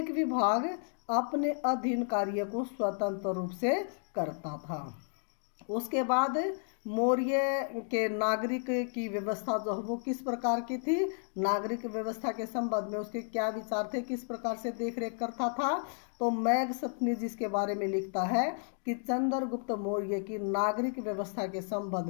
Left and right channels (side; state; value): right; silent; 56 dB below the other